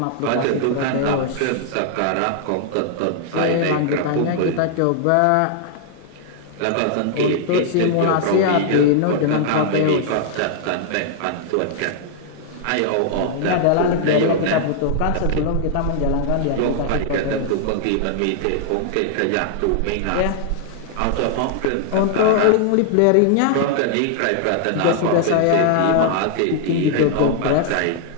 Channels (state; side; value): different; both; correlation 0.00